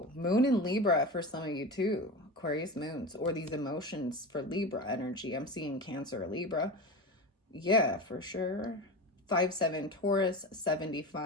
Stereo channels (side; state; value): both; normal; correlation 0.26